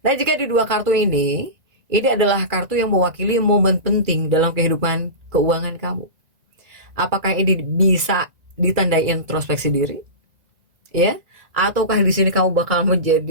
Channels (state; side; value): late; left; 2.0 ms